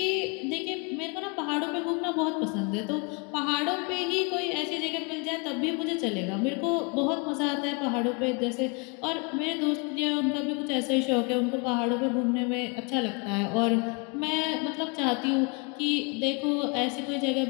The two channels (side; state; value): right; quieter; 31.6 dB